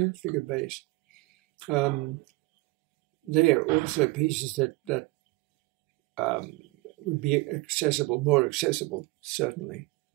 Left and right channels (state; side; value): quieter; left; 22.6 dB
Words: figured bass. They are also pieces that would be accessible, more accessible, certainly.